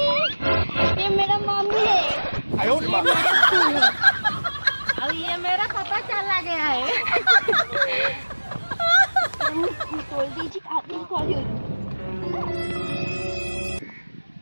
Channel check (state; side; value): inverted; both; correlation -1.00